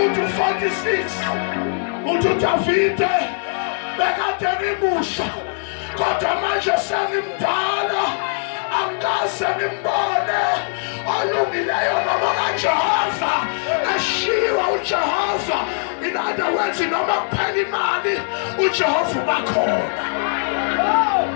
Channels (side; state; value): right; silent; 64 dB below the other